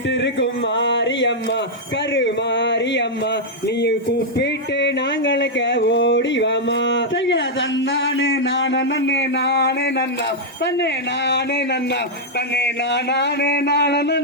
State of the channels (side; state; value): both; normal; correlation -0.04